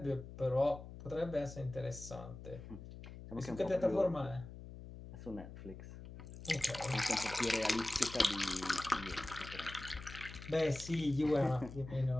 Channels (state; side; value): noise; left; hum, 13 dB below the sound